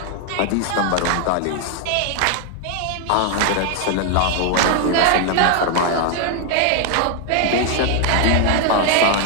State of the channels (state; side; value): different; both; correlation 0.01